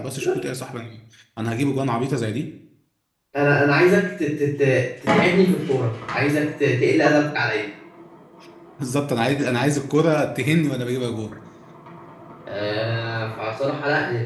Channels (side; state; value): both; identical; correlation 1.00